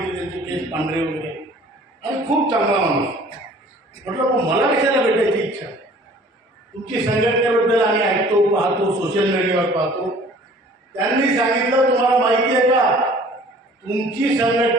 त्यांचे केस पांढरे वगैरे, आणि खूप चांगला माणूस. म्हटलं, मला कशाला भेटायची इच्छा? तुमची संघटनेबद्दल आम्ही ऐकतो, पाहतो, सोशल मीडियावर पाहतो. त्यांनी सांगितलं, तुम्हाला माहिती आहे का, तुमची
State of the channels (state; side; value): normal; both; correlation 0.51